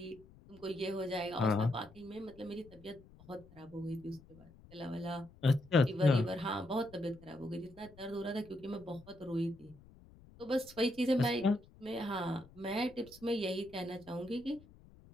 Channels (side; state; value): left; noise; rumble, 23 dB below the sound